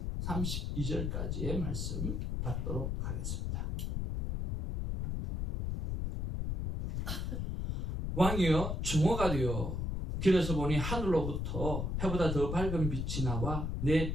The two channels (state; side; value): noise; left; rumble, 2 dB below the sound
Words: 32절까지의 말씀 받도록 하겠습니다. 왕이여 주모가 되어 길에서 보니 하늘로부터 해보다 더 밝은 빛이 나와 내